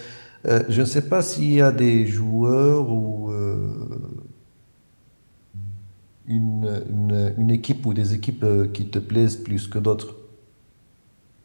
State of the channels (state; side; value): inverted; both; correlation -1.00